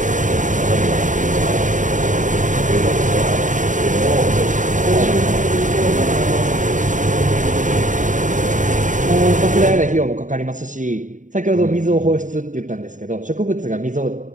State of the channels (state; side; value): late; left; 0.37 ms